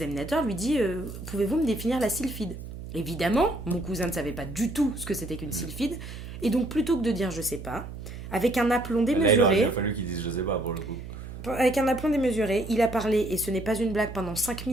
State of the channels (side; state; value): right; noise; hum, 11 dB below the sound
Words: lui dit pouvez-vous me définir la sylphide? Évidemment, mon cousin ne savait pas du tout ce que c'était qu'une sylphide. Et donc, plutôt que de dire je sais pas, avec un aplomb Là, il aurait démesuré. bien fallu qu'ils disent je sais pas pour le coup. Avec un aplomb démesuré, il a parlé, et ce n'est pas une blague, pendant 5